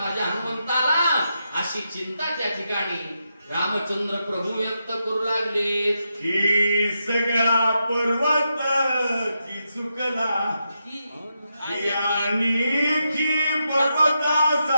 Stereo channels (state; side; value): inverted; both; correlation -0.85